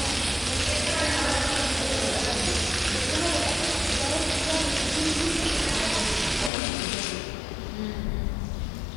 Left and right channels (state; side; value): drops out; right; at 6.5 s